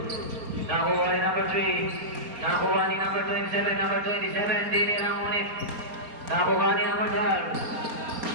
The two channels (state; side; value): late; left; 4.3 ms